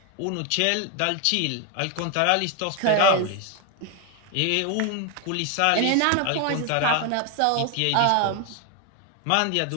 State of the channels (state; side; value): different; both; correlation 0.01